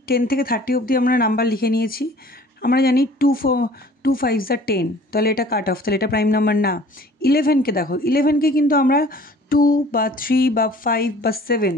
10 থেকে 30 অবধি আমরা নাম্বার লিখে নিয়েছি। আমরা জানি 2 5s are 10, তাহলে এটা কাট অফ, তাহলে এটা প্রাইম নাম্বার না। 11কে দেখো, 11কে কিন্তু আমরা 2 বা 3 বা 5 বা 7,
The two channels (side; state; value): both; normal; correlation 0.49